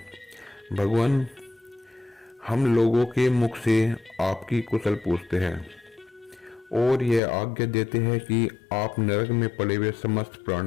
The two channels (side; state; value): right; drops out; at 7.2 s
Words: भगवान हम लोगों के मुख से आपकी कुशल पूछते हैं और यह आज्ञा देते हैं कि आप नरक में पड़े हुए समस्त